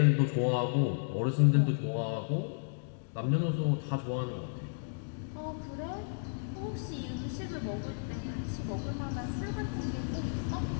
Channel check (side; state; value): right; silent; digital silence